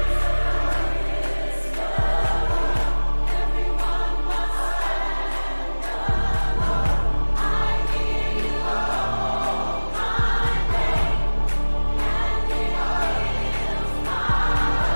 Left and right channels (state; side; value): inverted; both; correlation -1.00